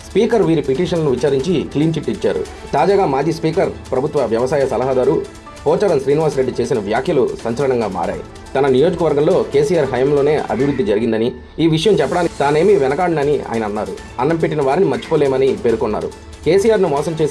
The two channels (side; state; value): both; identical; correlation 1.00